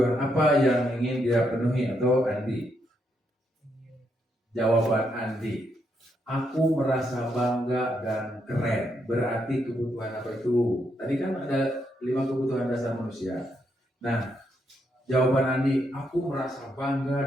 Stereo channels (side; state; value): both; normal; correlation 0.78